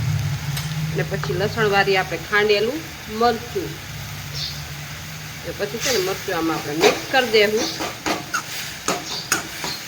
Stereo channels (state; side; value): identical; both; correlation 1.00